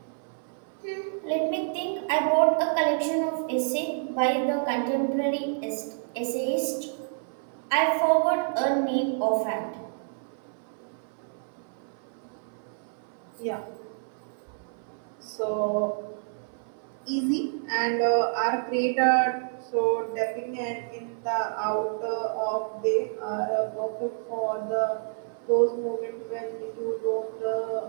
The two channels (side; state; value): left; silent; 59 dB below the other